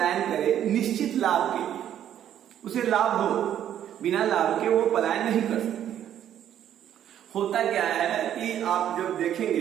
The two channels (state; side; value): quieter; left; 10.6 dB